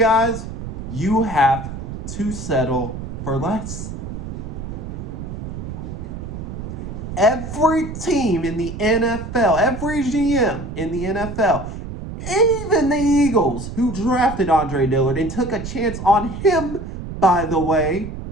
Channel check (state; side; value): noise; right; rumble, 8 dB below the sound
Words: you have to settle for less. Every team in the NFL, every GM in the NFL, even the Eagles, who drafted Andre Dillard and took a chance on him, by the way,